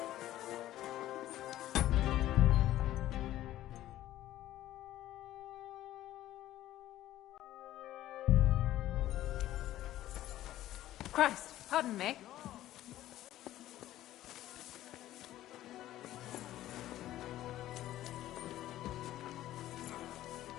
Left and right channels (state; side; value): quieter; right; 14.0 dB